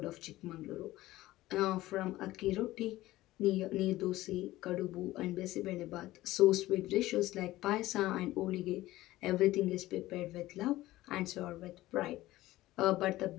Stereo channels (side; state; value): right; quieter; 16.8 dB